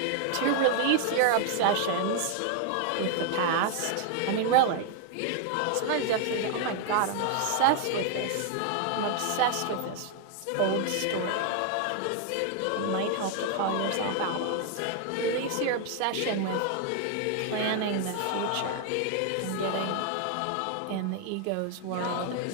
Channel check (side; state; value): both; different; correlation 0.00